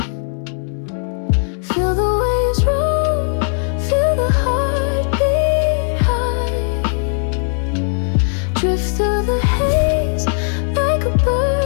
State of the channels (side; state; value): right; silent; digital silence